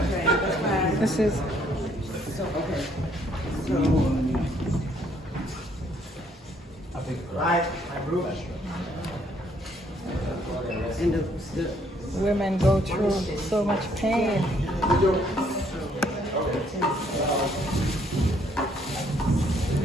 This is women go through so much pain.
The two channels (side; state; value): both; normal; correlation 0.67